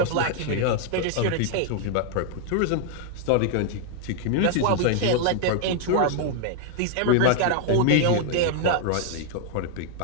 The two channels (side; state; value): both; different; correlation 0.00